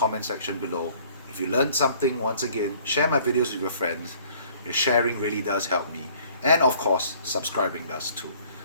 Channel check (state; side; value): inverted; both; correlation -0.56